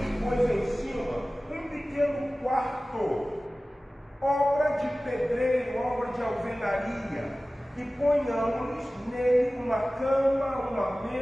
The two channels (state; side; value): normal; both; correlation 0.97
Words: pois, em cima um pequeno quarto, obra de pedreiro, obra de alvenaria, e ponhamos nele uma cama, uma